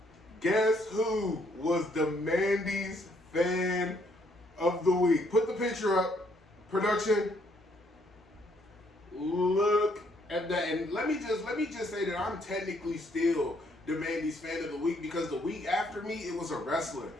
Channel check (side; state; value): both; normal; correlation 0.69